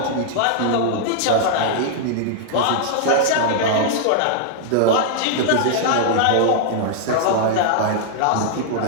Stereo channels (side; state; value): both; different; correlation -0.01